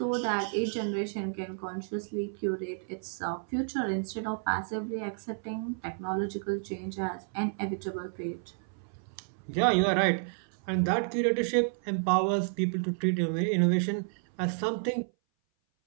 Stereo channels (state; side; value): silent; left; 57 dB below the other